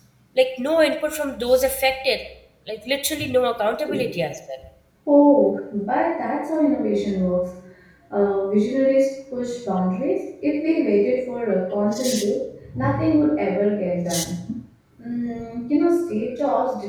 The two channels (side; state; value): both; identical; correlation 1.00